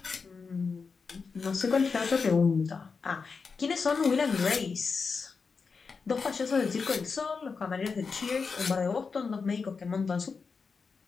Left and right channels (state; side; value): quieter; right; 5.0 dB